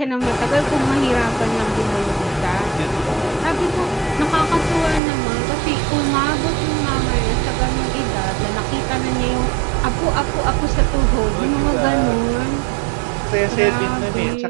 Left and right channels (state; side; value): drops out; left; at 5.0 s